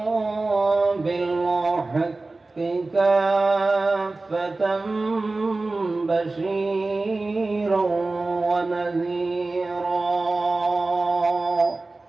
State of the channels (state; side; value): quieter; left; 3.3 dB